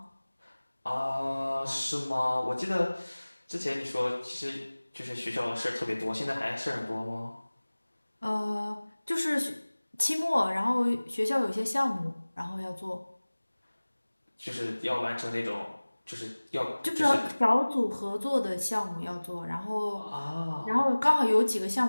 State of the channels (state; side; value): inverted; both; correlation -1.00